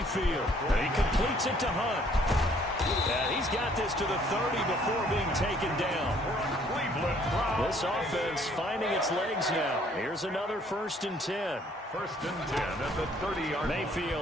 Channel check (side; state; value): both; normal; correlation 0.61